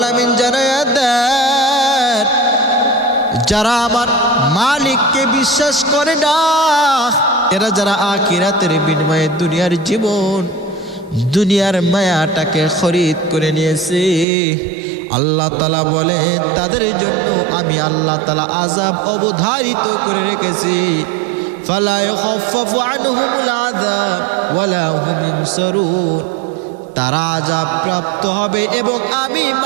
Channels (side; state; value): left; drops out; at 14.2 s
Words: জানায় দেন যারা আমার মালিককে বিশ্বাস করে না, এরা যারা আখিরাতের বিনিময়ে দুনিয়ার জীবন, দুনিয়ার মায়াটাকে খরিদ করে নিয়েছে, আল্লাহ তাআলা বলে তাদের জন্য আমি আল্লাহ তাআলা আযাব অবধারিত করে রেখেছি। ফালা ইখাফফাফু আনহুমুল আযাব ওয়ালা হুম ইউনসারুন। তারা আযাব প্রাপ্ত হবে এবং আমি